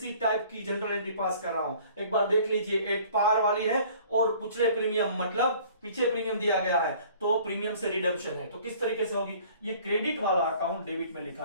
टाइप की जनरल एंट्री पास कर रहा हूं। एक बार देख लीजिए, एट पार वाली है और पिछले प्रीमियम मतलब पीछे प्रीमियम दिया गया है, तो प्रीमियम से रिडम्पशन है, तो किस तरीके से होगी, ये क्रेडिट वाला अकाउंट डेबिट में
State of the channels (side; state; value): both; inverted; correlation -0.52